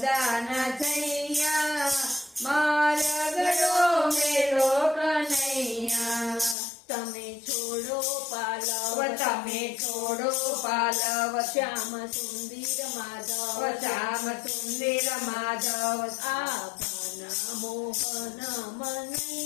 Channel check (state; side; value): drops out; right; at 6.6 s